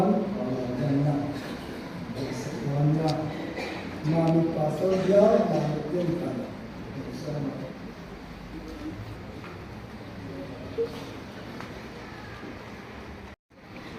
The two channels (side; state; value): both; identical; correlation 1.00